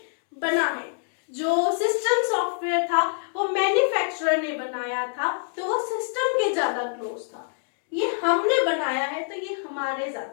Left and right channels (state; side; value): silent; right; digital silence